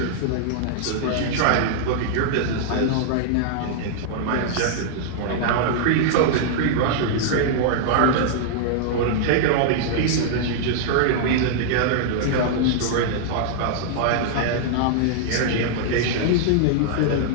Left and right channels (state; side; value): different; both; correlation -0.01